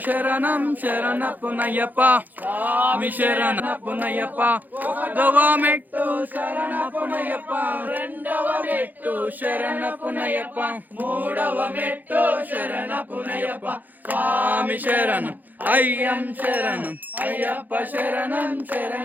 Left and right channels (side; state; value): left; late; 0.084 ms